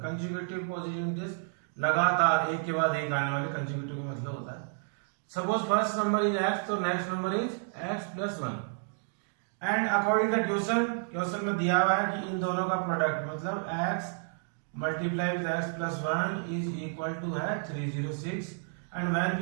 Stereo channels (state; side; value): silent; left; digital silence